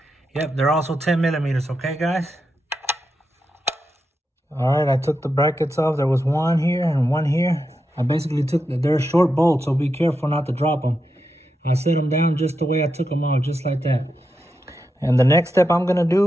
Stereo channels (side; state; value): both; normal; correlation 0.86